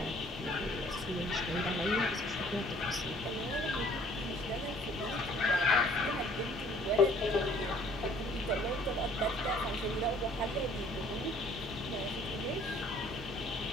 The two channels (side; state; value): both; normal; correlation 0.57